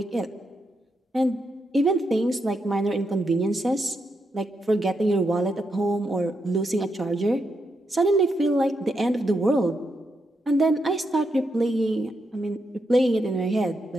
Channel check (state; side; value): normal; both; correlation 0.82